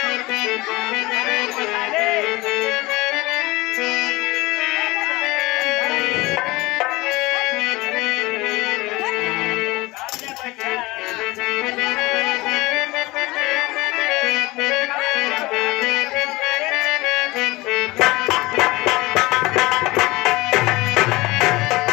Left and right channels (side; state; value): right; quieter; 21.2 dB